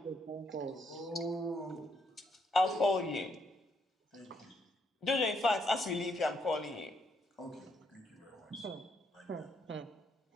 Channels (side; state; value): both; normal; correlation 0.74